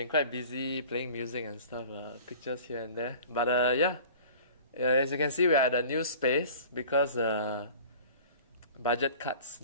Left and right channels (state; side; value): inverted; both; correlation -0.44